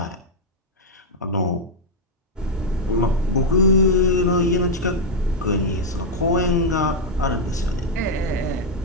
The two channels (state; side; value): normal; both; correlation 0.00